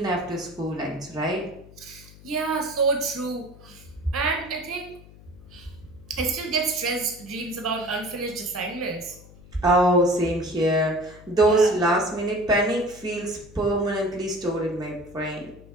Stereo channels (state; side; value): noise; left; hum, 21 dB below the sound